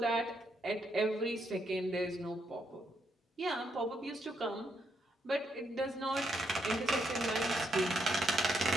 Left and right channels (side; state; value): both; normal; correlation 0.77